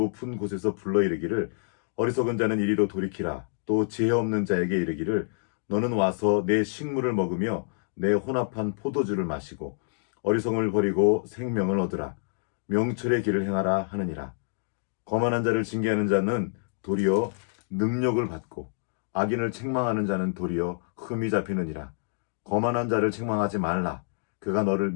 곳에서 불러 이르기를 어리석은 자는 이리로 돌이키라. 또 지혜 없는 자에게 이르기를 너는 와서 내 식물을 먹으며 내 혼합한 포도주를 마시고 어리석음을 버리고 생명을 얻으라. 명철의 길을 행하라 하느니라. 거만한 자를 징계하는 자는 도리어 능력을 받고 악인을 책망하는 자는 도리어 흠이 잡히느니라. 거만한 자를 책망하지 말라. 그가 너를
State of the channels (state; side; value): silent; right; digital silence